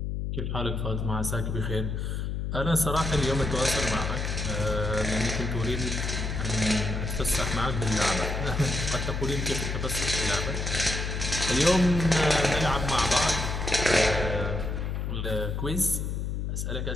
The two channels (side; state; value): left; noise; hum, 2 dB below the sound